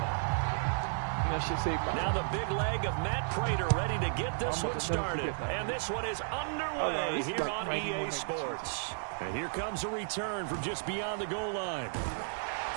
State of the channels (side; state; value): left; silent; digital silence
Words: And that shit saved my life. Now the big leg of Matt Prater ready to get this one started. And this one is underway here on EA Sports. And here comes a return from just beyond the goal line.